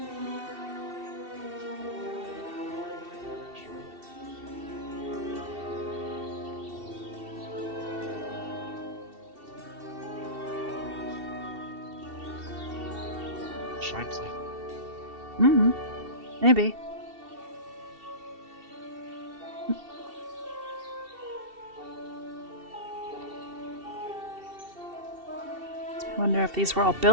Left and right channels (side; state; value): left; late; 2.7 ms